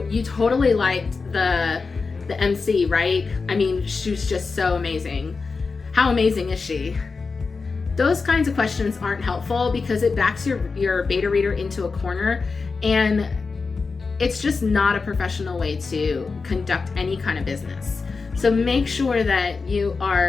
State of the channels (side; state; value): right; quieter; 4.5 dB